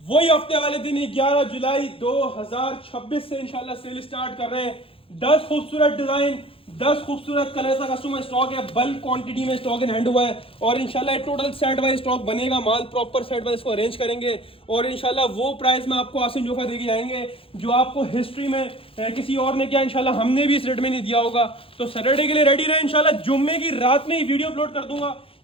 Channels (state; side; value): late; right; 0.27 ms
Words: वही हफ्ते वाले दिन 11 जुलाई 2026 से इंशाल्लाह सेल स्टार्ट कर रहे हैं। 10 खूबसूरत डिजाइन, 10 खूबसूरत कलर का कस्टमर स्टॉक है, बल्क क्वांटिटी में स्टॉक इन हैंड हुआ है और इंशाल्लाह टोटल सेट वाइज स्टॉक बनेगा, माल प्रॉपर सेट वाइज इसको अरेंज करेंगे और इंशाल्लाह वो प्राइस में आपको आसिम जोफा देके जाएंगे जो आपको हिस्ट्री में किसी और ने किया, इंशाल्लाह हमने भी इस रेट में नहीं दिया होगा। तो सैटरडे के लिए रेडी रहे, इंशाल्लाह जुम्मे की रात में ही वीडियो अपलोड कर दूंगा,